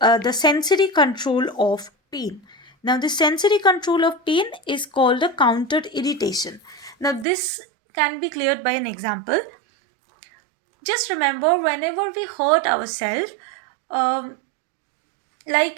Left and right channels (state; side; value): drops out; left; at 7.2 s